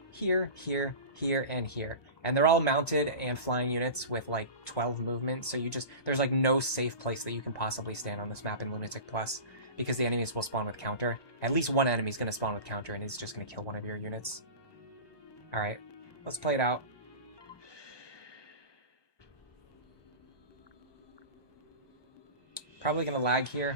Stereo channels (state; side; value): late; right; 1.2 ms